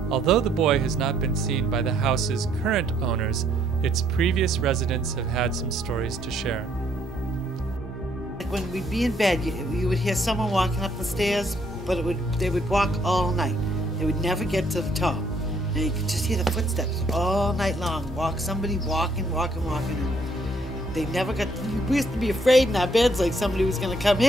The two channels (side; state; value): both; normal; correlation 0.68